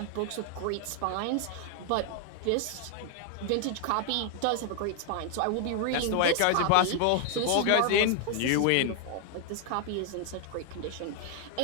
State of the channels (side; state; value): both; different; correlation 0.00